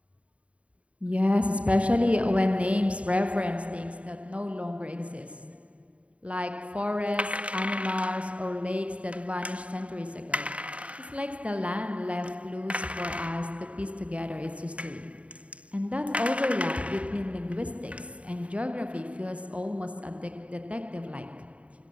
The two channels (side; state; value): left; late; 0.064 ms